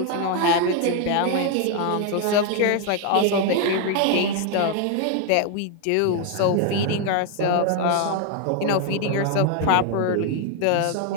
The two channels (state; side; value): different; both; correlation 0.01